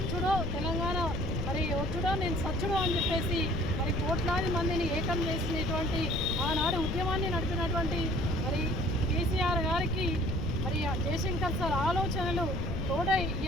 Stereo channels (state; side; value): noise; left; rumble, 2 dB below the sound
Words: నేను సచ్చుడో అని చెప్పేసి మరి కోట్లాది మందిని ఏకం చేసినటువంటి ఆనాడు ఉద్యమాన్ని నడిపినటువంటి మరి కేసీఆర్ గారికి మరి జయశంకర్ సార్ ఆలోచనలు తోడై